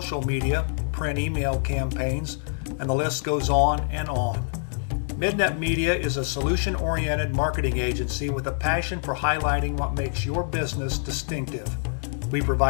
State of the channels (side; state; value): right; silent; digital silence